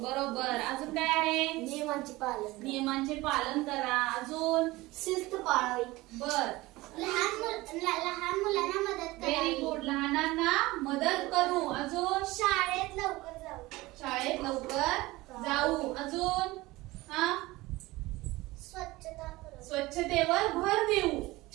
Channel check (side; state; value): left; quieter; 20.0 dB